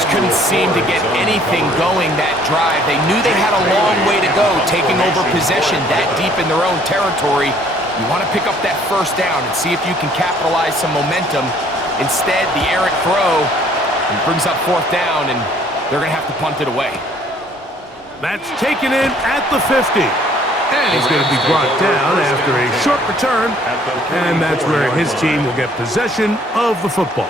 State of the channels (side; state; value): both; normal; correlation 0.60